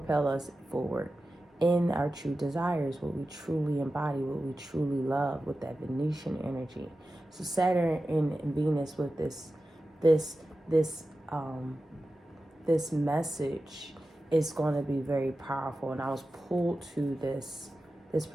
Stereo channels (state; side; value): normal; both; correlation 0.93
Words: us forward in our true desires, what we truly embody, what we truly love, with that Venetian energy. So Saturn and Venus with this message is going to be very powerful. And I was pulled to this